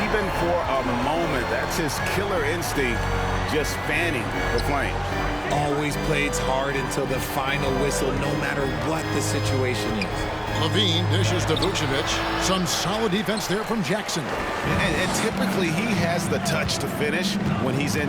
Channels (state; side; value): identical; both; correlation 1.00